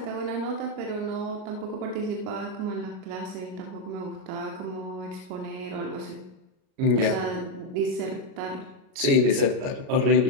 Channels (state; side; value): late; left; 37 ms